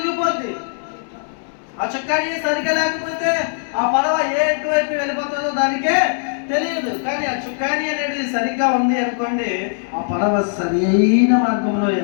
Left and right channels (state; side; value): silent; right; digital silence